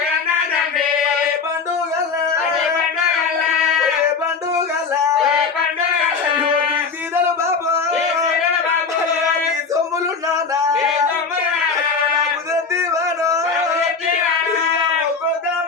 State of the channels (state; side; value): quieter; right; 5.1 dB